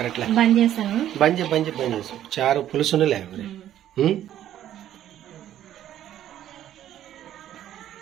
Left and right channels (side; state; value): left; quieter; 11.7 dB